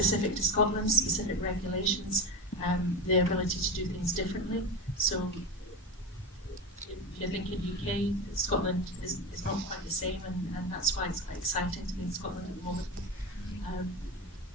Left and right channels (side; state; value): both; normal; correlation 0.20